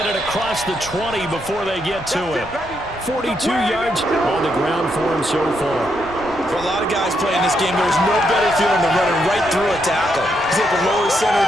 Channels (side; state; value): both; normal; correlation 0.79